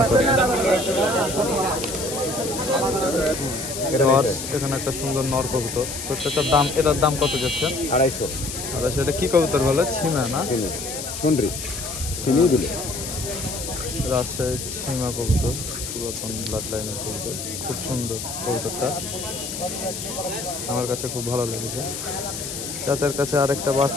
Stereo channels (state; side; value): noise; left; hiss, 7 dB below the sound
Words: করব। এখানে একটা সুন্দর নর কবুতর, তো সেটার দাম, এটার দাম কত যাচ্ছে? 250। এটা কি কবুতর বলে? ছিমা না? রাজশাহী ছিমা কবুতর, পুরাতন ব্লাড লাইনের কবুতর, খুব সুন্দর কবুতরটা, আমার কাছে খুব ভালো লেগেছে। চাচার কাছে আরেকটা